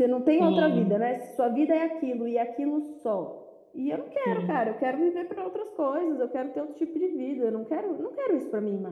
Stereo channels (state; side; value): identical; both; correlation 1.00